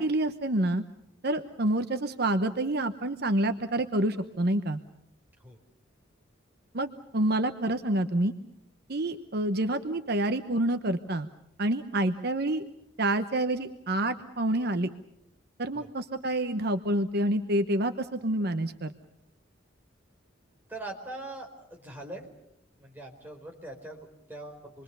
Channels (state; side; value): normal; both; correlation 0.40